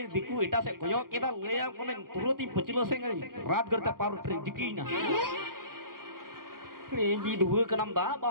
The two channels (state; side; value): late; left; 0.92 ms